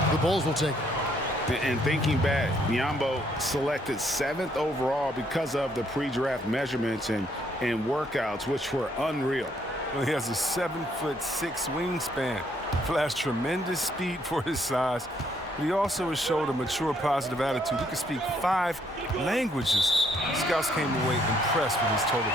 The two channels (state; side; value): normal; both; correlation 0.69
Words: The Bulls will take it. And thinking back, Biyombo selected 7th overall because of the pre-draft measurements and workouts, which were unreal. Well, he has a 7'6" wingspan. Flashed tremendous speed for his size, but he also has showed a mature, positive attitude. He can speak 5 languages. Scouts came away impressed with his total